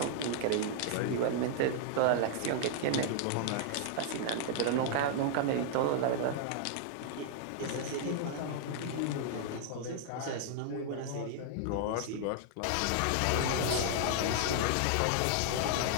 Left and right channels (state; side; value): different; both; correlation -0.01